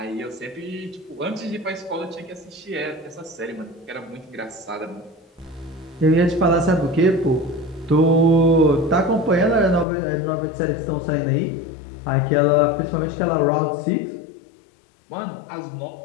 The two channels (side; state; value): right; drops out; at 9.9 s